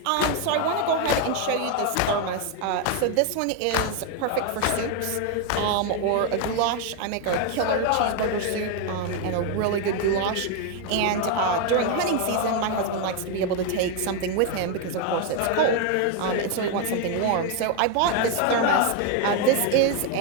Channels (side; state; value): both; different; correlation 0.01